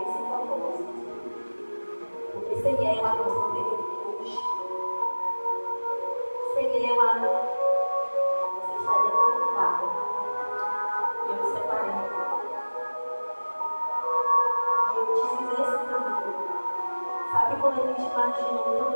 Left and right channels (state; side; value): inverted; both; correlation -1.00